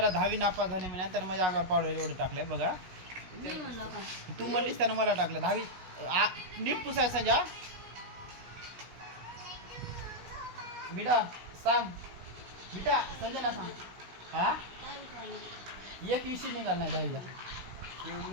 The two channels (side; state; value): left; late; 16 ms